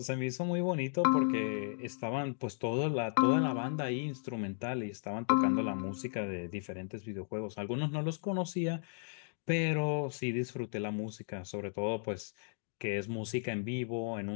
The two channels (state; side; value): silent; right; digital silence